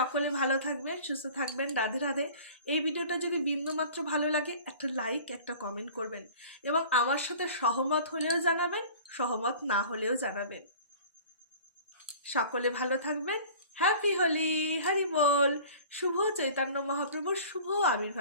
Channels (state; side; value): inverted; both; correlation -0.44